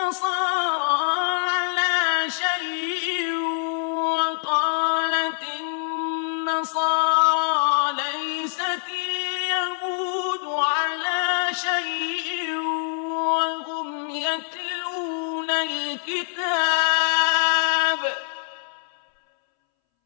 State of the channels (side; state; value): right; silent; 62 dB below the other